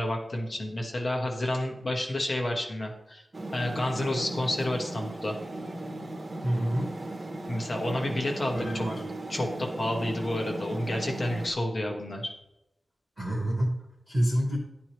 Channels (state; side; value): normal; both; correlation 0.95